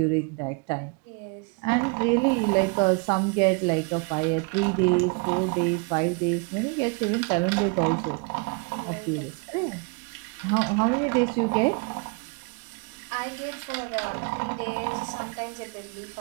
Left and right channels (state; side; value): quieter; left; 32.8 dB